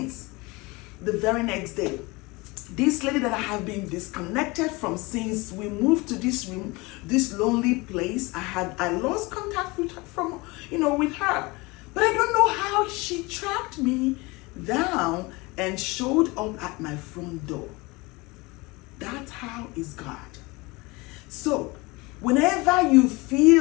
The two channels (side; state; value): right; quieter; 24.3 dB